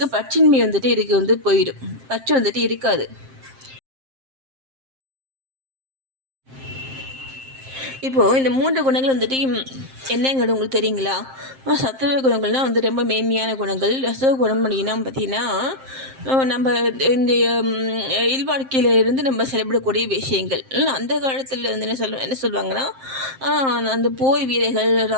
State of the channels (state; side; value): late; left; 7.6 ms